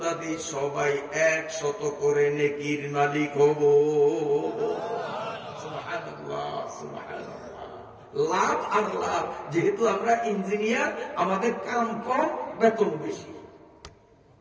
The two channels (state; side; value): identical; both; correlation 1.00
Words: সবাই 100 করে নেকির মালিক হব। সুবহানাল্লাহ, সুবহানাল্লাহ। লাভ আর লাভ। যেহেতু আমরা ইঞ্জিনিয়ার, আমাদের কাম কম, বেতন বেশি।